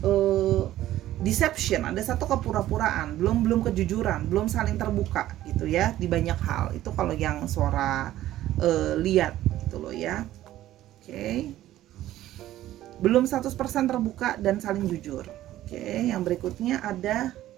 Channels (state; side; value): quieter; left; 14.0 dB